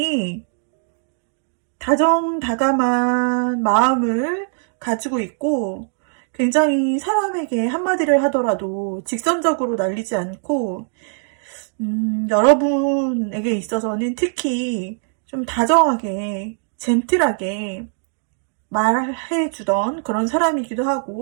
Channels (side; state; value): left; silent; 65 dB below the other